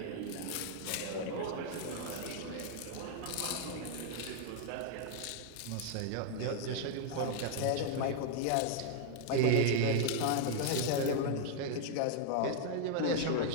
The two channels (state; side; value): different; both; correlation 0.00